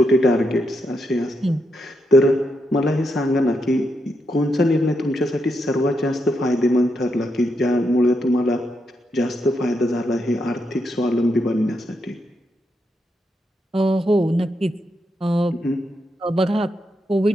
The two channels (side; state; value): both; normal; correlation 0.82